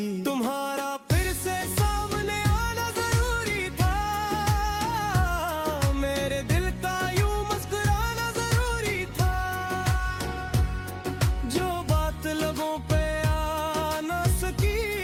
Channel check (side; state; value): both; identical; correlation 1.00